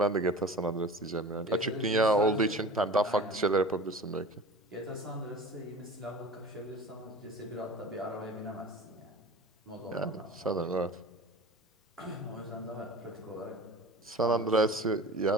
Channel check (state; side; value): normal; both; correlation 0.38